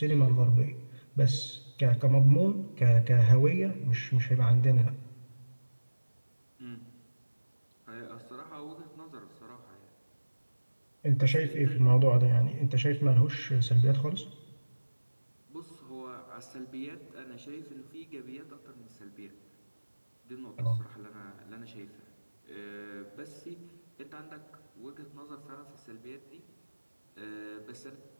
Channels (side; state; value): both; inverted; correlation -1.00